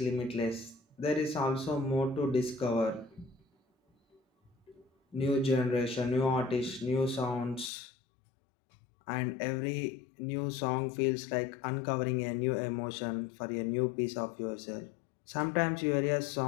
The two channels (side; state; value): right; drops out; at 7.7 s